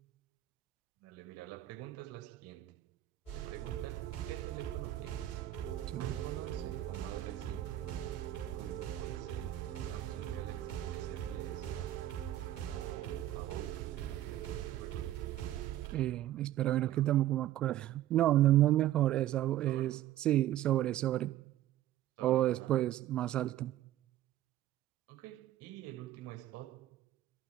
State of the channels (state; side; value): quieter; left; 13.4 dB